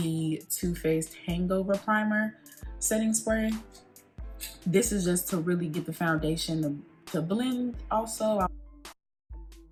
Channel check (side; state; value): both; identical; correlation 1.00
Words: Too Faced Hangover Primer setting spray. This is just to really get the foundation to blend also.